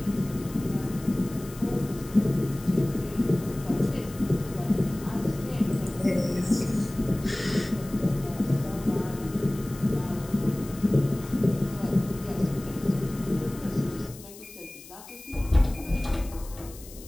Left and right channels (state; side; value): noise; left; hiss, 18 dB below the sound